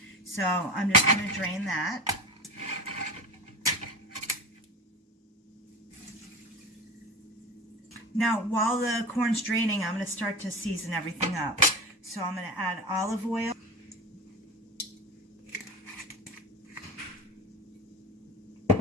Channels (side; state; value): both; normal; correlation 0.29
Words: So I'm just going to drain that. Now, while the corn's draining, I'm going to start to season everything up. So I'm going to add olive oil.